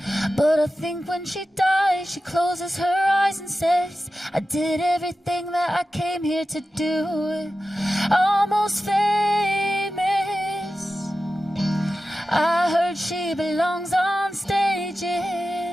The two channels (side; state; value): both; normal; correlation 0.93